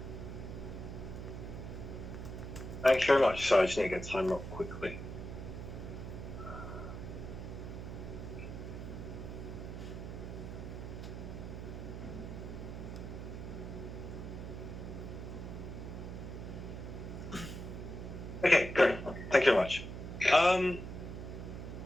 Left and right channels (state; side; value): noise; right; hum, 7 dB below the sound